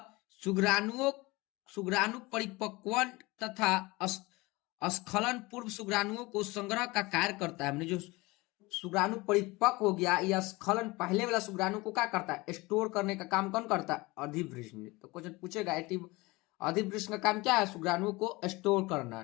शुक्राणु परिपक्वन तथा स्खलन पूर्व शुक्राणुओं को संग्रह का कार्य करता है। जो शुक्राणु परिपक्व हो गया या स्खलन पहले वाला शुक्राणु को क्या करता है? स्टोर करने का काम कौन करता है? अधिवृषण। तो क्वेश्चन पूछेगा अधिवृषण का काम क्या है? शुक्राणु को स्टोर करना।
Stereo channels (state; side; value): quieter; right; 22.7 dB